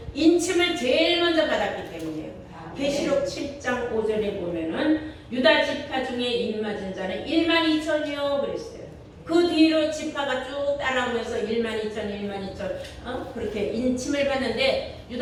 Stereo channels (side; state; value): both; identical; correlation 1.00